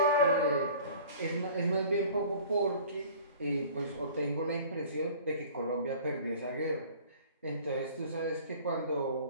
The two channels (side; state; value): both; inverted; correlation -0.47